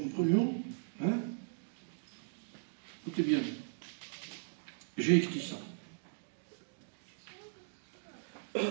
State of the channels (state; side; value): silent; left; digital silence